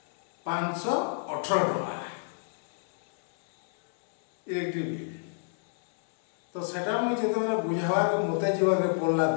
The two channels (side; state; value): right; silent; 59 dB below the other